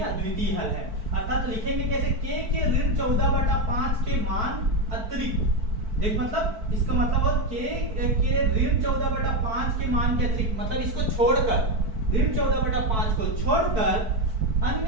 अद्वितीय हल है। अर्थात लिखेंगे कैसे, k के -14 बटा 5 के मान अतिरिक्त, देख मतलब इसका मतलब है के -14 बटा 5 के मान के अतिरिक्त, मतलब इसको छोड़कर -14 बटा 5 को छोड़कर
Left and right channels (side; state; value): left; late; 4.6 ms